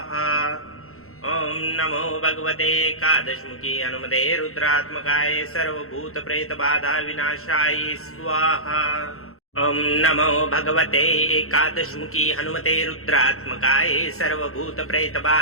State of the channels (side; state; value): right; late; 0.63 ms